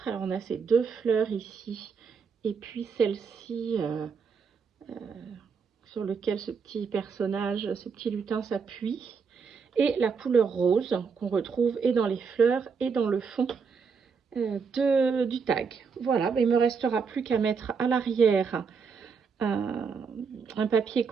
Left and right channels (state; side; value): quieter; left; 5.7 dB